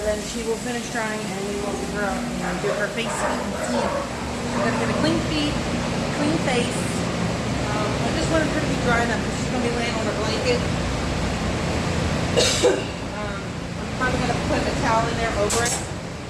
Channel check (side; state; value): both; identical; correlation 1.00